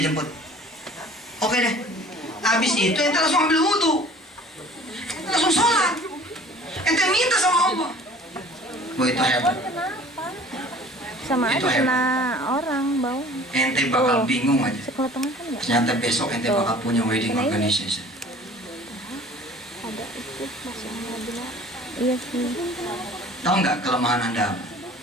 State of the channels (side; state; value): both; normal; correlation 0.48